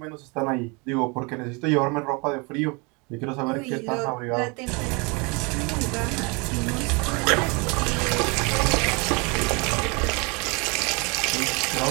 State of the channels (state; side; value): quieter; left; 29.5 dB